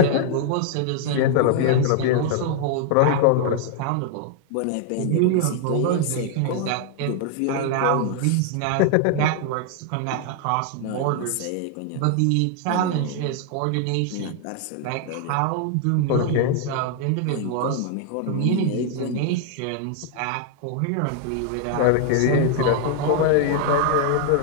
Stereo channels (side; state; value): both; different; correlation 0.00